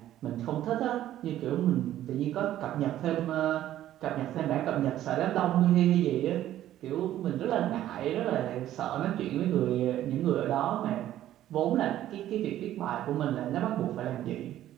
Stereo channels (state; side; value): quieter; left; 12.8 dB